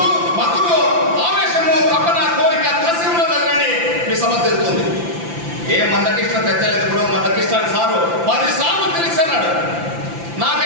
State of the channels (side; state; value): left; late; 5.9 ms